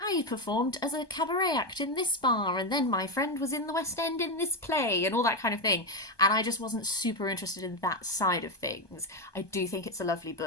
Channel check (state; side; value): late; right; 1.2 ms